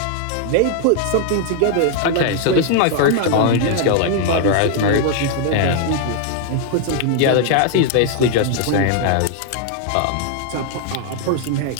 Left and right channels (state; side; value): different; both; correlation 0.00